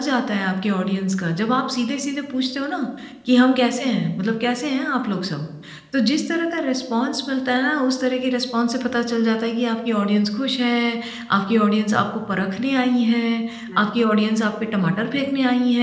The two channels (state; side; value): identical; both; correlation 1.00